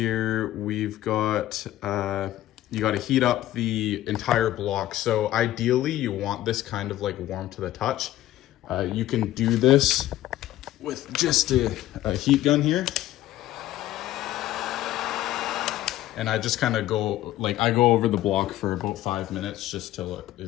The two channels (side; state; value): right; quieter; 14.5 dB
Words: we've got you got to heat up the entire block. So ideally you want this kind of like warm to the touch. You can do this with just a heat gun here. And I just kind of go over the block for about 5 minutes, just till it